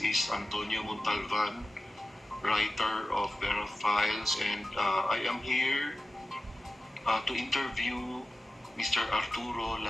is Antonio Montalban, writer of Verifals, and I am here to interview Mr. Arturo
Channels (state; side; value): normal; both; correlation 0.95